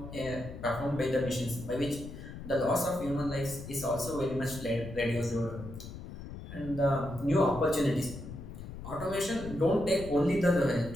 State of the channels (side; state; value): left; noise; rumble, 11 dB below the sound